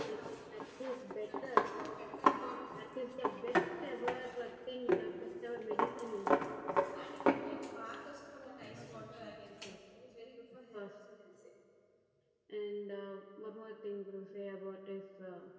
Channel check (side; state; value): both; identical; correlation 1.00